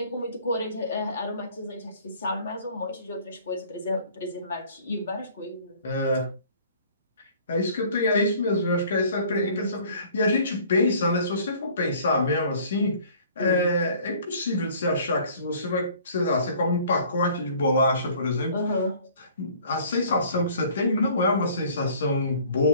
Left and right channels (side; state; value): both; inverted; correlation -0.53